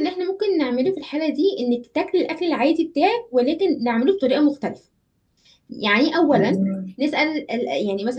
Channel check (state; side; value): identical; both; correlation 1.00